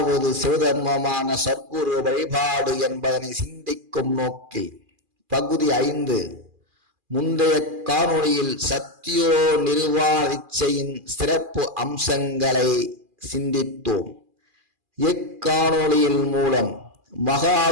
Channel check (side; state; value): left; late; 2.4 ms